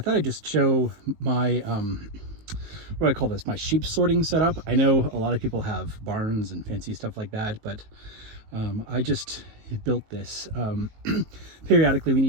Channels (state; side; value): late; left; 19 ms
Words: thought I'd just show my, what do I call this, my sheep sorting setup. I know a lot of people have barns and fancy stuff like that, but I just built this. Periodically we